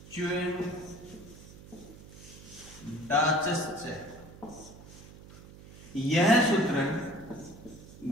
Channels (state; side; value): noise; right; hum, 18 dB below the sound